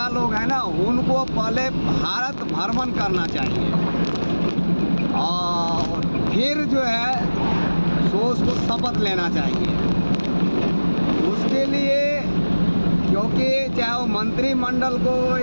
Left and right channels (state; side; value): inverted; both; correlation -1.00